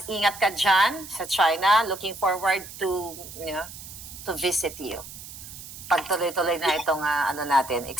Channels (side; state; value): right; noise; hiss, 14 dB below the sound